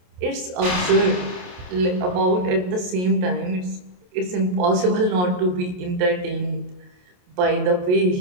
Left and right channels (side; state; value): left; late; 28 ms